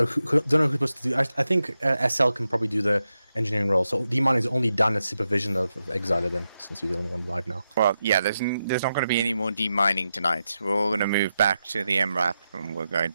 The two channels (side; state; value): both; inverted; correlation -0.88